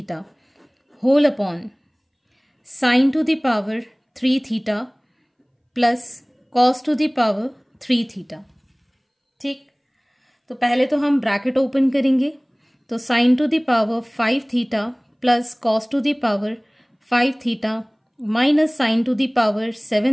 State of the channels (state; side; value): identical; both; correlation 1.00